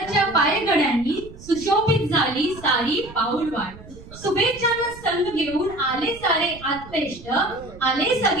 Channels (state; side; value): noise; right; rumble, 18 dB below the sound